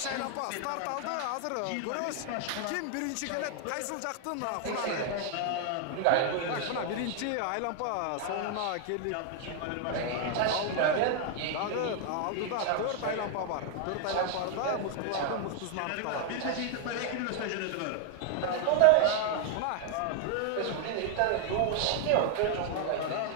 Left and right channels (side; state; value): both; different; correlation 0.00